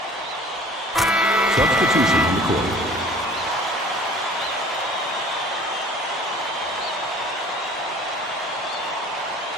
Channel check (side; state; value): both; normal; correlation 0.48